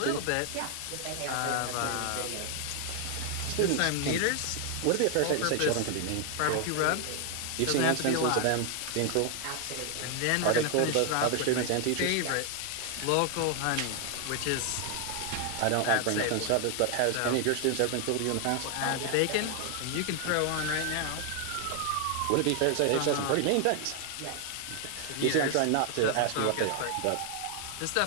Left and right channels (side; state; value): both; different; correlation 0.00